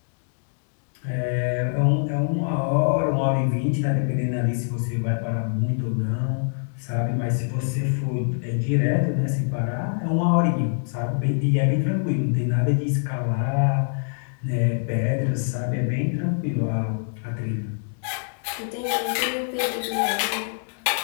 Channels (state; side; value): silent; right; digital silence